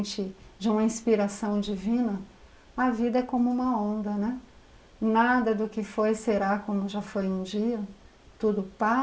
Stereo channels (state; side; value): identical; both; correlation 1.00